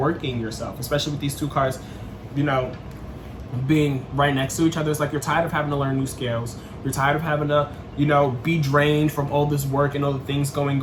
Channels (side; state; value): both; identical; correlation 1.00